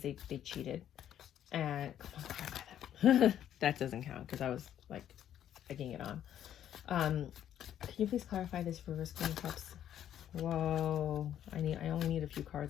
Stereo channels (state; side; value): quieter; right; 10.6 dB